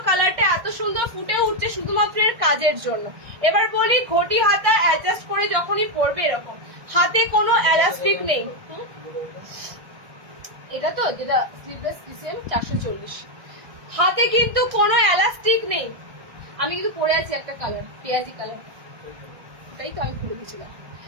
কালারটা এত সুন্দর ফুটে উঠছে শুধুমাত্র এর কাজের জন্য। এবার বলি ঘটি হাতা অ্যাডজাস্ট করে যখনই পরবে এরকম, হাতে কোনো এলাস্টিক নেই। এটা তো যেটা স্লিভলেস ডিসিএম 440, হাতে কিন্তু কোনো এলাস্টিক নেই। আমি কিন্তু পরে আছি একটা কালার, পেঁয়াজি কালার, এটাই তো আমি খুলে দিয়েছিলাম।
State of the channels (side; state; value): left; late; 1.6 ms